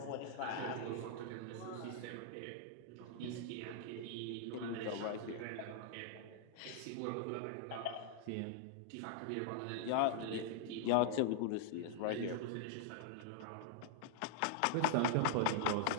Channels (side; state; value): both; different; correlation -0.01